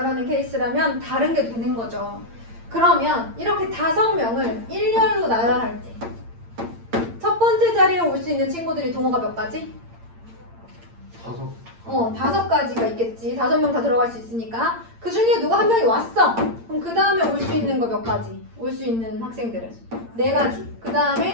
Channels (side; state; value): left; late; 8.8 ms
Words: 케이스라면 다른 게 되는 거죠. 그러면 이렇게 5명을 일렬로 나열할 때 첫 번째 자리에 올 수 있는 친구들이 동호가 몇 가지? 5가지가 있겠지. 5명 다 들어갈 수 있으니까. 그 중에 누가 한 명이 왔어. 그럼 그 다음에 올 수 있는 거 몇 가지? 올 수 있는 학생들은 4가지. 그